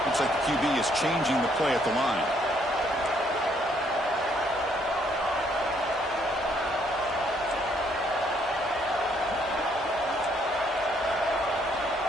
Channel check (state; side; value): normal; both; correlation 0.68